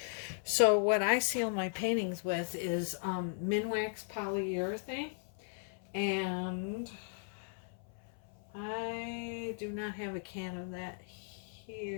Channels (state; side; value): silent; right; 53 dB below the other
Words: So what I seal my paintings with is Minwax polyurethane. And I do not have a can of that